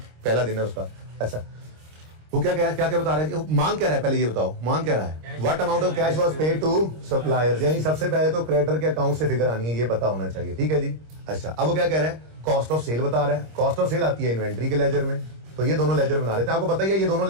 पहला दिन है उसका। अच्छा वो क्या बता रहे थे, मांग क्या रहा है पहले ये बताओ, मांग क्या रहा है? What amount of cash was paid to suppliers, यानी सबसे पहले तो क्रेडिटर के अकाउंट से फिगर आनी है, ये पता होना चाहिए, ठीक है जी। अच्छा अब वो क्या कह रहा है, कॉस्ट ऑफ सेल बता रहा है। कॉस्ट ऑफ सेल आती है इन्वेंट्री के लेजर में, तो ये दोनों लेजर बना लेते हैं। आपको पता ही है ये दोनों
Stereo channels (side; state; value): left; late; 26 ms